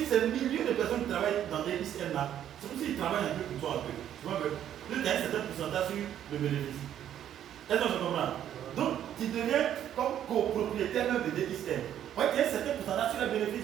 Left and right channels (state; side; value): quieter; left; 10.6 dB